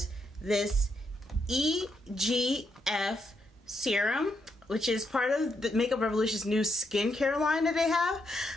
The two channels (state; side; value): normal; both; correlation 0.79